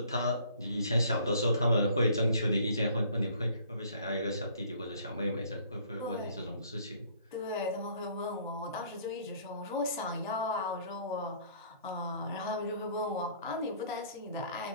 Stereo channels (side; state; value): both; inverted; correlation -0.58